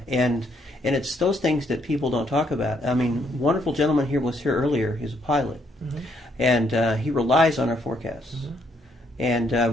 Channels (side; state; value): both; normal; correlation 0.72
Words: And it's those things that people don't talk about. I mean, wonderful gentleman here was here earlier. He's a pilot, and he relies on our forecasts.